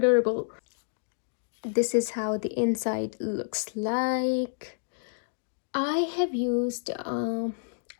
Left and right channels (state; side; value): silent; right; digital silence